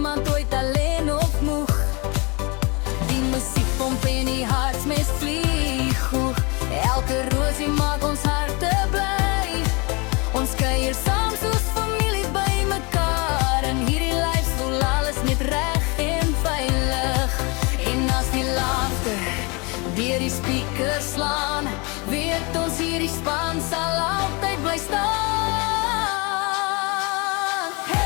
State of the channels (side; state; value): right; quieter; 28.9 dB